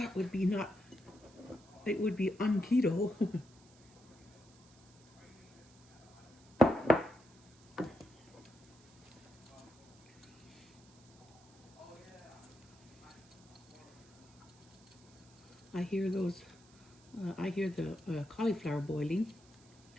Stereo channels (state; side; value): noise; right; hiss, 26 dB below the sound